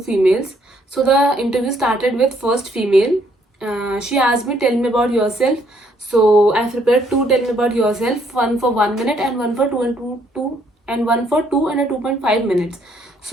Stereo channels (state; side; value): normal; both; correlation 0.68